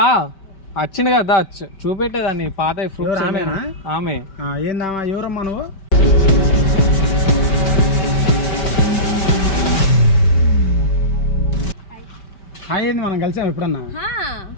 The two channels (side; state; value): right; late; 5.2 ms